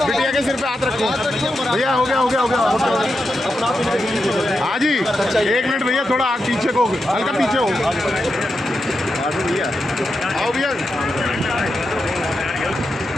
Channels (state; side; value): normal; both; correlation 0.87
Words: बिटिया के सिर पे हाथ रखो भैया। हो गया। हाँ जी 1 मिनट भैया, थोड़ा आग पीछे को, हल्का पीछे हो भैया। आओ भैया।